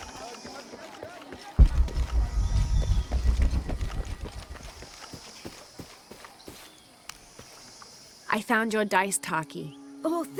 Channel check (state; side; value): identical; both; correlation 1.00